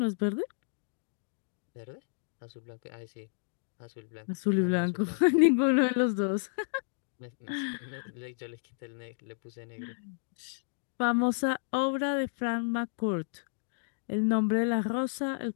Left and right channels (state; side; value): silent; right; digital silence